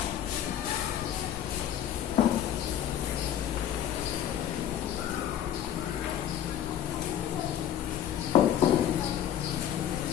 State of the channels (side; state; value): right; quieter; 10.4 dB